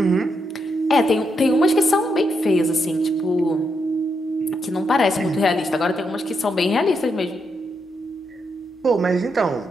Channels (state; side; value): normal; both; correlation 0.81